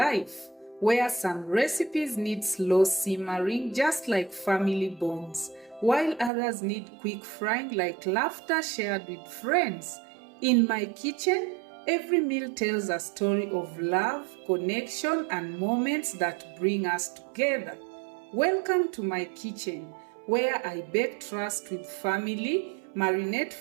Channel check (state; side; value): drops out; left; at 6.3 s